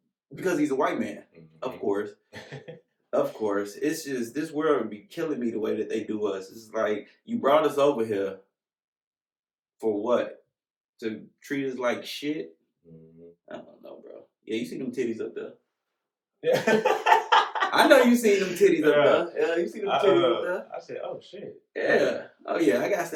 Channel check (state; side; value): identical; both; correlation 1.00